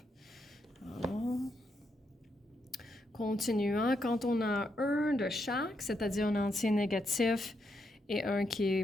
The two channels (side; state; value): both; normal; correlation 0.80